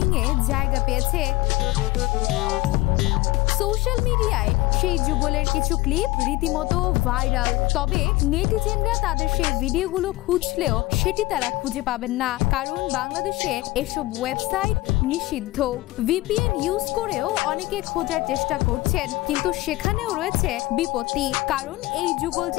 এ জায়গা পেয়েছে। সোশ্যাল মিডিয়ায় সেই যুগলের কিছু ক্লিপ রীতিমতো ভাইরাল, তবে নেটিজেনরা তাদের সেই ভিডিওগুলো খুঁজলেও সেটি তারা খুঁজে পাবেন না, কারণ বাংলাদেশে এসব ওয়েবসাইট নিষিদ্ধ। ভিপিএন ইউজ করেও অনেকে খোঁজার চেষ্টা করছেন, কিন্তু সেখানেও রয়েছে বিপত্তি, কারণ এই যুগল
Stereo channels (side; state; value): right; quieter; 19.8 dB